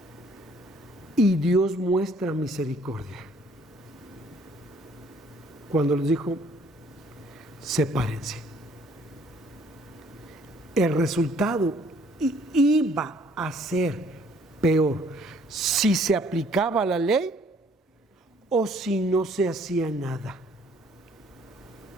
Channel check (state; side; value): normal; both; correlation 0.60